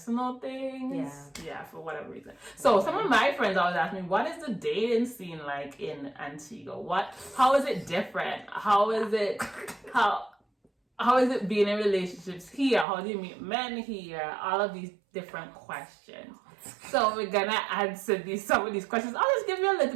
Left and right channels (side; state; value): left; drops out; at 12.9 s